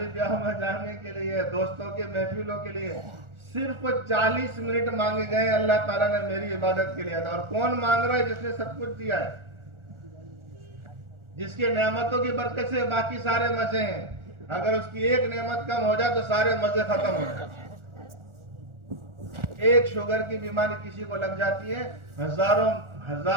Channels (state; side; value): late; left; 1.4 ms